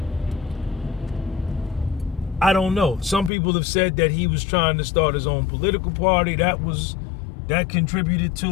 I don't know. Some people have said that he was trying to start his own political party. That contributed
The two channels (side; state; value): right; drops out; at 3.3 s